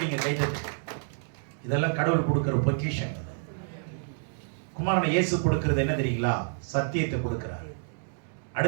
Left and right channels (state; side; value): silent; left; digital silence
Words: நீங்க கை தட்டு. இதெல்லாம் கடவுள் கொடுக்கிற பொக்கிஷன். குமாரனை இயேசு கொடுக்கிறது என்ன தெரியுங்களா? சத்தியத்தை கொடுக்கிறார்.